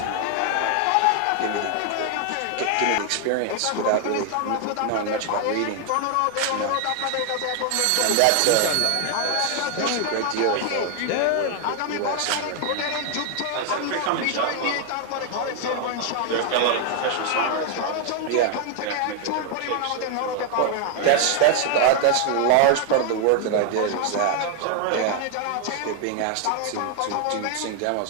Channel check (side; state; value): both; different; correlation 0.00